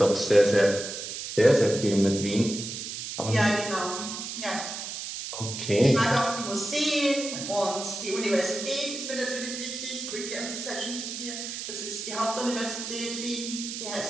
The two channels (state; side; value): noise; right; hiss, 7 dB below the sound